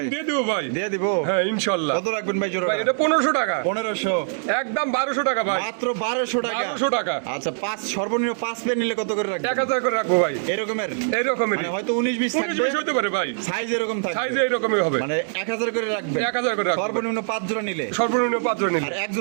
দিয়ে দেবো ভাই। দিয়ে দিব হ্যাঁ ইনশাআল্লাহ। কত রাখবেন ভাই জোড়া ভাই এটা 1500 টাকা। 1500 একদম 1200 টাকা ভাই। মাত্র 1200 টাকা 1200 টাকা। আচ্ছা পাঁচ সর্বনিম্ন 5 পেয়ার নিলে কত করে রাখবেন 1000 করে রাখবো ভাই। এরকমের এইরকমের মানে হয়তো 19 20 19 থাকবে 20 হতে পারে ভাই। সাইজ এরকম থাকবে সাইজ এইরকমই হবে। মানে 1000 করে রাখবেন 1000 করে রাখবো। সর্বনিম্ন 5 জোড়া নিলে সর্বনিম্ন 5 জন নিলে আর এক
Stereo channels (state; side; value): silent; left; digital silence